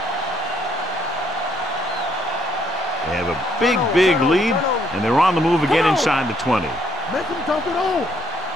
They have a big lead, and they're on the move again inside the 20. Make him dump it on.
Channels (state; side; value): normal; both; correlation 0.69